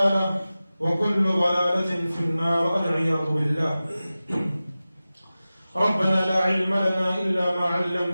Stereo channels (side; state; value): both; inverted; correlation -0.96